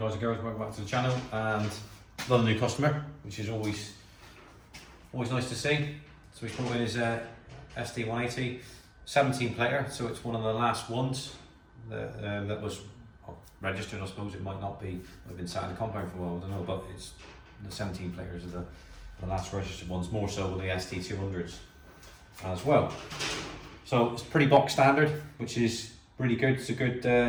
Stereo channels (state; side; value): identical; both; correlation 1.00